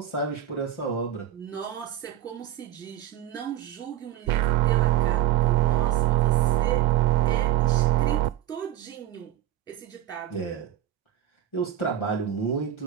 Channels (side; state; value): left; quieter; 11.6 dB